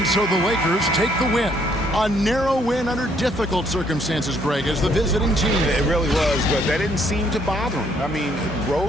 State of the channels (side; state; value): both; normal; correlation 0.67